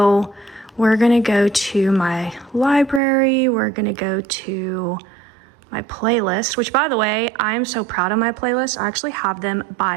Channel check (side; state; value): left; drops out; at 3.0 s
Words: we're gonna go to my library. We're gonna go to my playlist, which, by the way, I'm so proud of my playlist. I actually have them